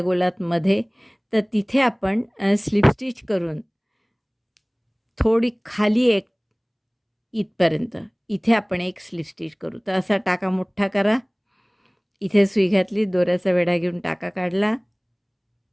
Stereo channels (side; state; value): both; identical; correlation 1.00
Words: गोलात मध्ये, तर तिथे आपण स्लिप स्टिच करून थोडी खाली एक इथपर्यंत इथे आपण एक स्लिप स्टिच करू. तर असा टाका मोठा करा, इथे सुई घातली, दोऱ्याचा वेढा घेऊन टाका काढला